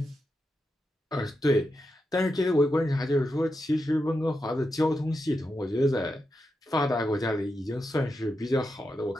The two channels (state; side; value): normal; both; correlation 0.87